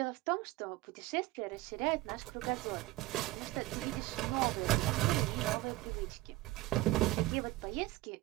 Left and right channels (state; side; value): quieter; left; 18.6 dB